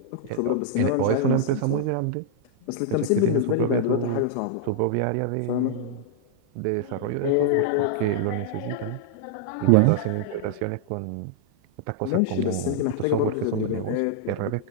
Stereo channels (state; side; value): different; both; correlation -0.02